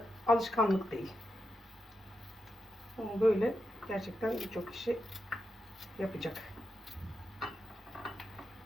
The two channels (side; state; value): both; normal; correlation 0.86